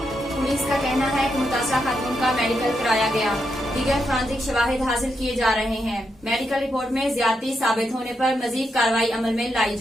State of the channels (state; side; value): normal; both; correlation 0.82